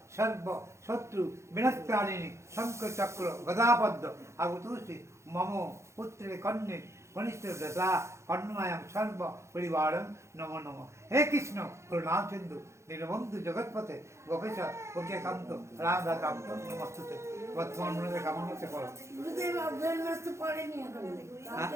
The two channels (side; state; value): left; late; 0.14 ms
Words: সর্ব শত্রু বিনাশকারিণী শঙ্খ চক্র গদাপদ্ম আগতুষি মম পুত্রে কন্যে কনিষ্ঠ দশা কর্ণমায়াম সর্ব পরিবারম নমো নম হে কৃষ্ণ করুণাম সিন্ধু দীনবন্ধু জগৎপথে গোপেশ ওকে কান্ত রাধা কান্ত নমস্তুতে বর্তমান মনে কেমন হচ্ছে করো গুরুদেব অগ্রহণ মাস তো পড়েনি এখন।